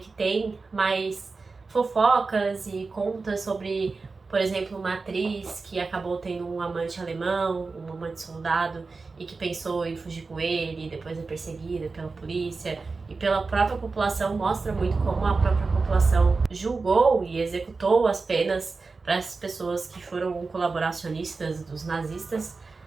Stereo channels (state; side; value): quieter; left; 4.1 dB